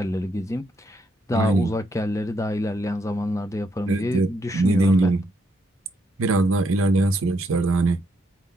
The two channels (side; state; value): both; normal; correlation 0.76